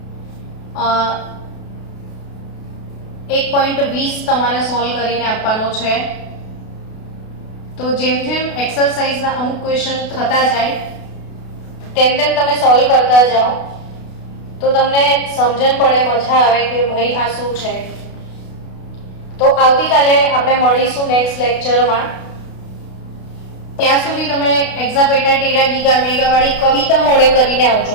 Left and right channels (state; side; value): late; right; 32 ms